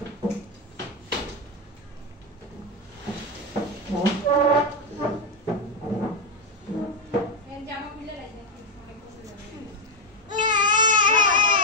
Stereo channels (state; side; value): normal; both; correlation 0.07